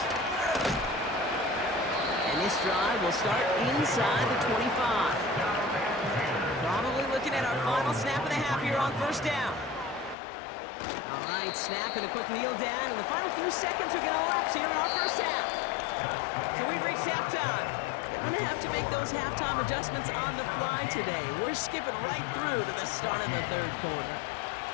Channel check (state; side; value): drops out; right; at 10.2 s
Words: And this drive will start inside the 25. Probably looking at our final snap of the half here on 1st down. All right, snap and a quick kneel down, and the final few seconds are going to elapse here in our 1st half. So we've reached halftime. They're going to have to make those halftime adjustments on the fly today. We're skipping right through to the start of the 3rd quarter.